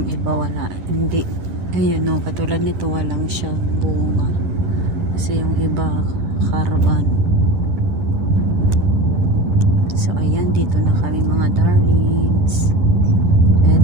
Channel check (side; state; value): left; late; 11 ms